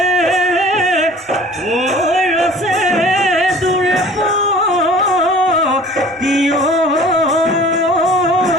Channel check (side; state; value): both; normal; correlation 0.47